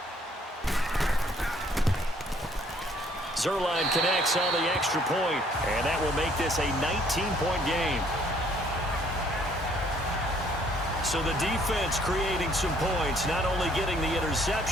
Zerline connects on the extra point, and that will make this a 19-point game. So the defense creating some points, not only getting the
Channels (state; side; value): normal; both; correlation 0.62